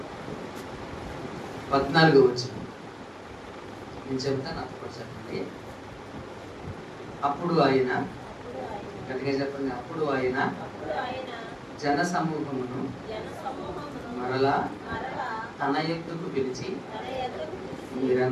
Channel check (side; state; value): both; identical; correlation 1.00